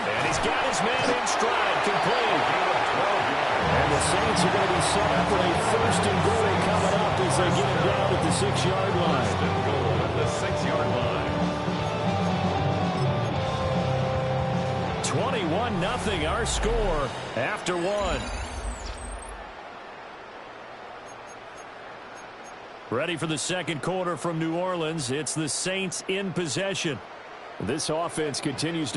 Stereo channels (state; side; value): identical; both; correlation 1.00